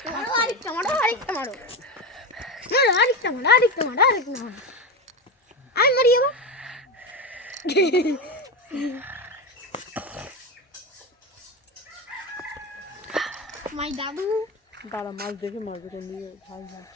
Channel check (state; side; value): normal; both; correlation 0.17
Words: মারো, আরেকটা মারো, আরেকটা মারো, মারো, আরেকটা মারো, আরেকটা মারো, আরেকটা মারো। আমি মারি এবার। মাই দাদু দাঁড়া, মাছ দেখে মারবে, কোন দিকে ভাই